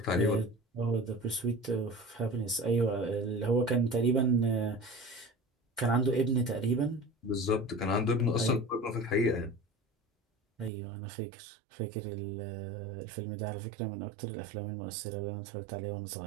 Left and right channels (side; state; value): left; drops out; at 10.7 s